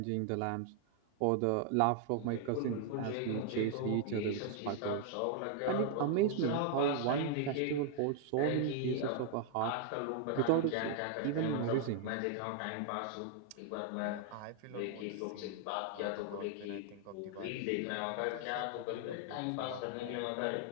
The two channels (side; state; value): both; different; correlation 0.00